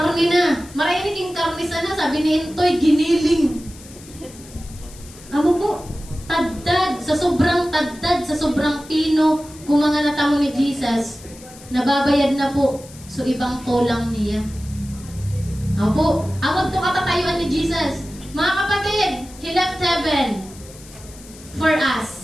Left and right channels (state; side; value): noise; left; hiss, 20 dB below the sound